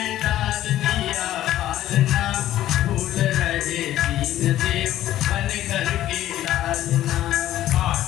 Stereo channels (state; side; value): quieter; right; 13.4 dB